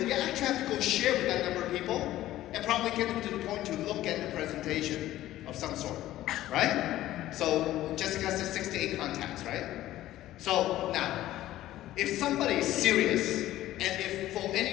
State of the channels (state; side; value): quieter; right; 14.5 dB